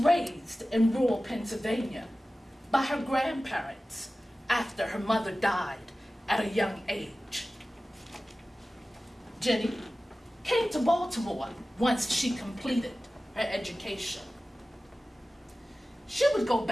in rural Pennsylvania by her grandparents after her mother died at a young age. Jenny came to Baltimore once she completed her education. She would go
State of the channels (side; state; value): both; normal; correlation 0.96